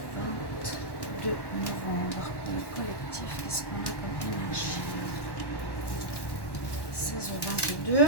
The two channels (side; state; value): right; late; 1.1 ms